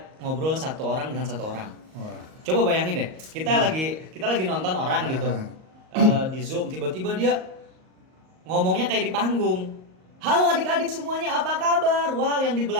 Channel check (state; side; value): late; left; 38 ms